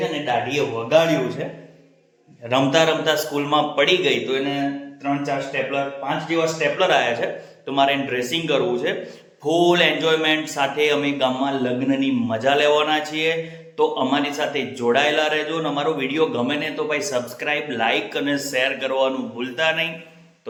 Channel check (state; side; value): identical; both; correlation 1.00